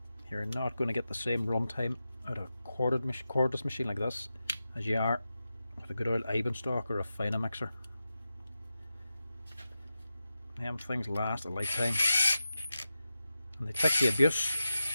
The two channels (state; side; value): inverted; both; correlation -0.91